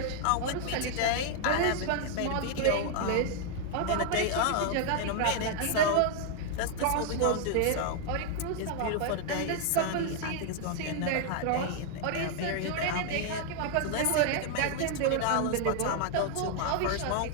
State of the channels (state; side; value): different; both; correlation 0.00